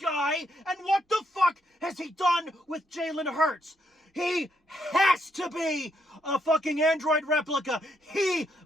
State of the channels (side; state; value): both; normal; correlation 0.76